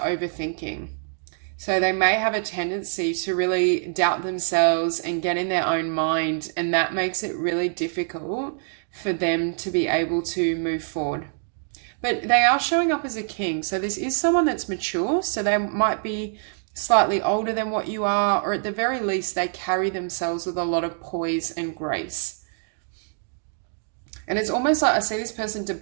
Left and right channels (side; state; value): left; silent; digital silence